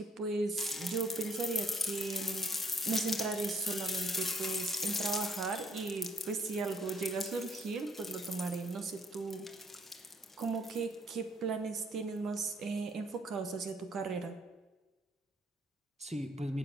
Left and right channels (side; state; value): both; normal; correlation 0.64